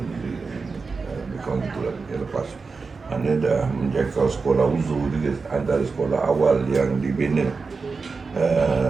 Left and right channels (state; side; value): quieter; left; 4.5 dB